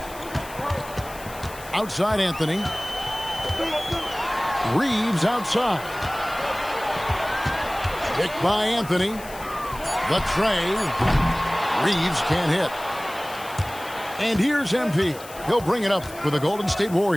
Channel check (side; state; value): left; noise; hiss, 17 dB below the sound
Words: Outside Anthony. Reeves outside. Picked by Anthony. The tray. Reeves can't hit. And here's MP. He'll bring it up for the Golden State